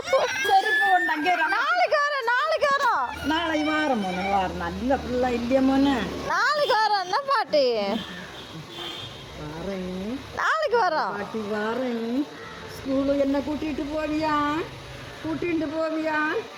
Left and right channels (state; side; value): identical; both; correlation 1.00